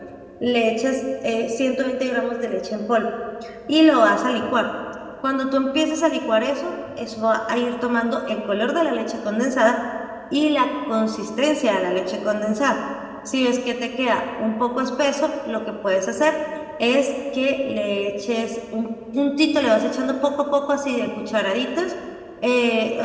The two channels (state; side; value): identical; both; correlation 1.00